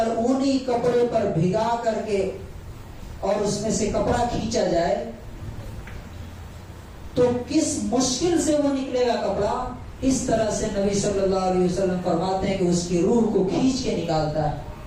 اونی کپڑے پر بھگا کر کے اور اس میں سے کپڑا کھینچا جائے تو کس مشکل سے وہ نکلے گا کپڑا، اس طرح سے نبی صلی اللہ علیہ وسلم فرماتے ہیں کہ اس کی روح کو کھینچ کے نکالتا ہے۔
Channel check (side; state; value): both; identical; correlation 1.00